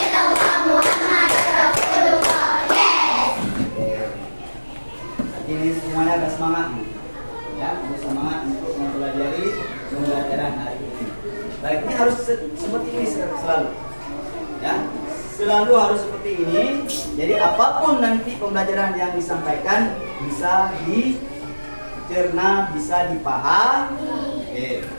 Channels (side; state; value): both; inverted; correlation -1.00